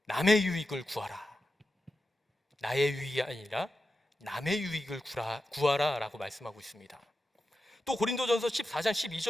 남의 유익을 구하라. 나의 유익이 아니라 남의 유익을 구하라 라고 말씀하고 있습니다. 또 고린도전서 14장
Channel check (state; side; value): normal; both; correlation 0.91